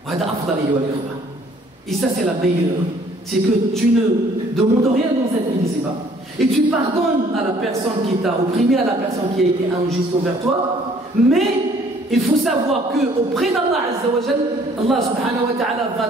وهذا أفضل أيها الإخوة. Et ça c'est la meilleure c'est que tu ne demandes rien dans cette vie ici-bas. Et tu pardonnes à la personne qui t'a opprimé, à la personne qui a été injuste envers toi, mais il faut savoir qu'auprès d'Allah Azza wa Jal, Allah subhanahu wa ta'ala va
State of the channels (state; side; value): normal; both; correlation 0.59